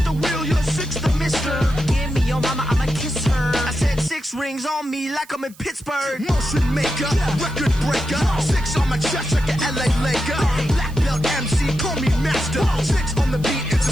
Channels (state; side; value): noise; right; hiss, 25 dB below the sound